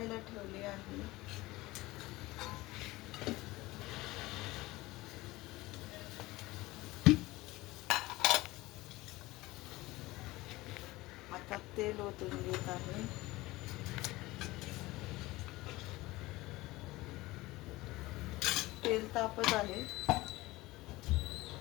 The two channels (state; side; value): quieter; right; 19.7 dB